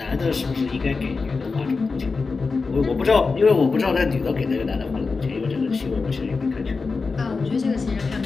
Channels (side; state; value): right; quieter; 4.4 dB